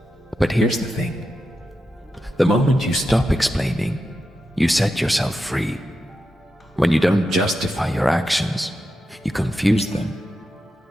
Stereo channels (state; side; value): normal; both; correlation 0.89